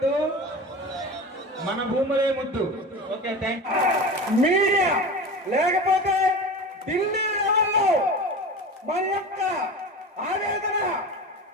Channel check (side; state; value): both; normal; correlation 0.31